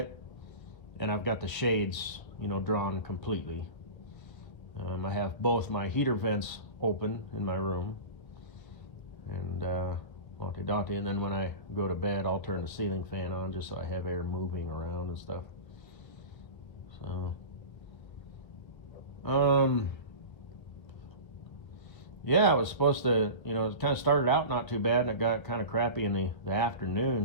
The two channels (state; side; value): late; right; 1.3 ms